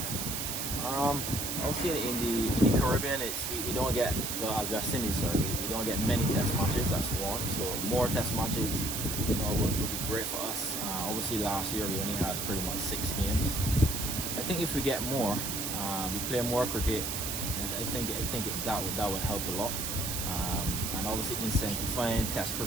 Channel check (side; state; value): right; noise; hiss, 2 dB below the sound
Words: Obviously in the Caribbean, we don't get, well, as West Indies, sorry, we don't get many Test matches. That's one. So more Test matches, you know, would be great for us. Obviously last year we only had pretty much 6 games. I think if we get more, we play more cricket, and I think that would help a lot. And obviously incentivizing Test